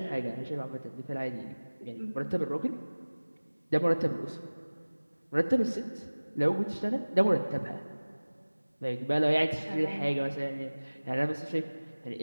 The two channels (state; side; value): inverted; both; correlation -1.00